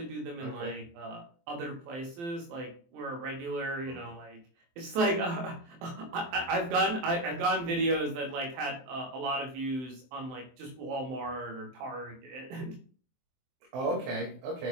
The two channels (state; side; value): late; left; 23 ms